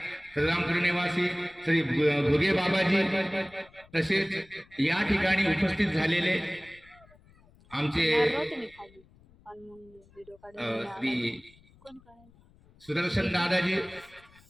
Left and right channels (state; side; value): noise; left; rumble, 28 dB below the sound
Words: श्रीरामपूर निवासी श्री भोगे बाबाजी, तसेच या ठिकाणी उपस्थित झालेले आमचे श्री सुदर्शन दादाजी,